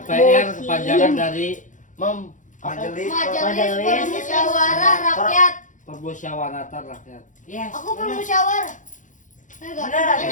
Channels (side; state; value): right; late; 0.37 ms